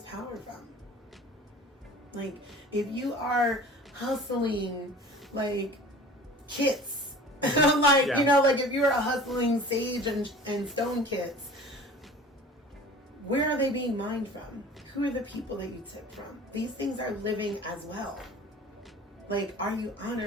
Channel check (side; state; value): both; normal; correlation 0.42